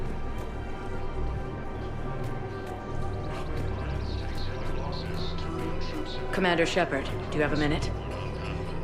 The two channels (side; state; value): both; identical; correlation 1.00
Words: Commander Shepard, do you have a minute?